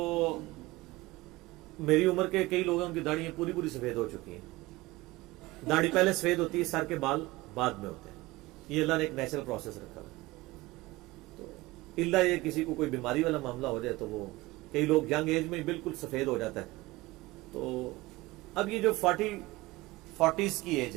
میری عمر کے کئی لوگوں کی داڑھی پوری پوری سفید ہو چکی ہیں. داڑھی پہلے سفید ہوتی ہے, سر کے بال بعد میں ہوتے ہیں. یہ اللہ نے ایک نیچرل پروسیس رکھا ہے. تو اللہ یہ کسی کو کوئی بیماری والا معاملہ ہو جائے تو وہ کئی لوگ ینگ ایج میں بالکل سفید ہو جاتا ہے. تو اب یہ جو 40s کی ایج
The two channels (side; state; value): left; quieter; 20.0 dB